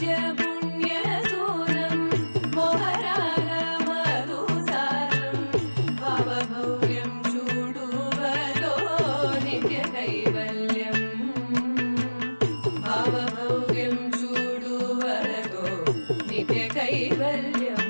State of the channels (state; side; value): inverted; both; correlation -1.00